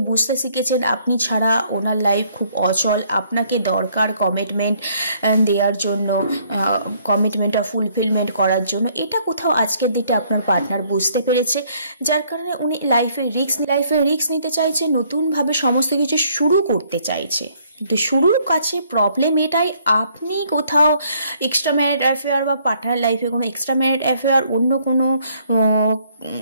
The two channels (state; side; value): inverted; both; correlation -0.65